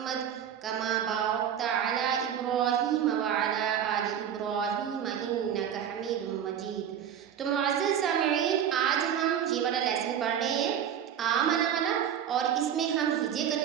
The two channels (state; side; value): quieter; left; 9.0 dB